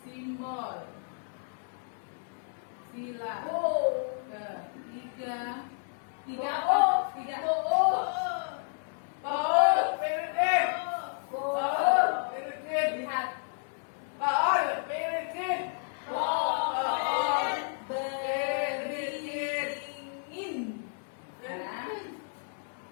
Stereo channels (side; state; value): right; silent; digital silence